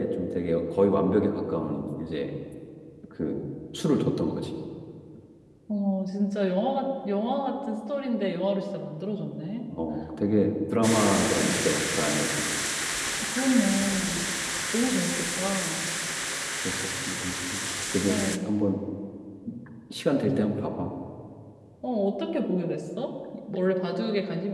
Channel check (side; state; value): both; identical; correlation 1.00